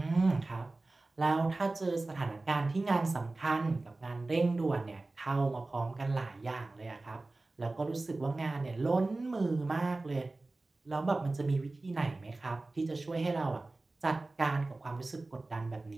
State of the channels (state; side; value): quieter; left; 3.1 dB